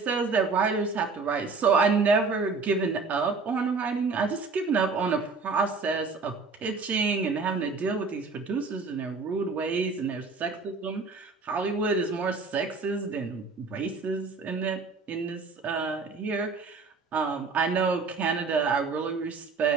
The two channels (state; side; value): quieter; left; 4.4 dB